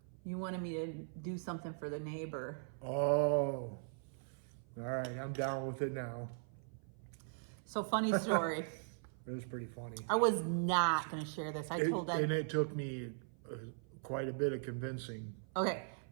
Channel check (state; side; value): silent; left; 51 dB below the other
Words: You wanted me to do something for the neighbor. Oh. All right, I'm down with it now. So funny story. It was pretty funny. I was not going to share this. I told Ed. And it took me quite a bit of convincing. Okay,